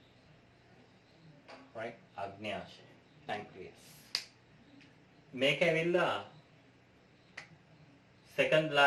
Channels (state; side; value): identical; both; correlation 1.00